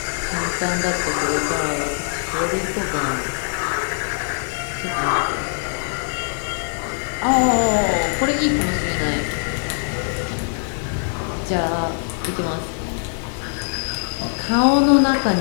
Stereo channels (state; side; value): silent; right; 64 dB below the other